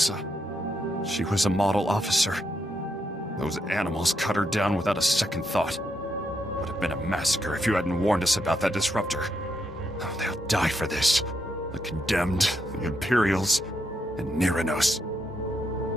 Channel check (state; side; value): normal; both; correlation 0.80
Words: she was a model officer. Those animals cut her down without a second thought. Would have been a massacre if you hadn't warned us about that disruptor. Oh, they'll die for this. The Condemned, the Imperials, and Neranos.